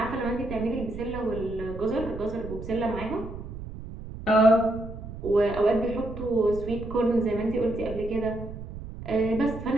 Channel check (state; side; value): noise; right; rumble, 11 dB below the sound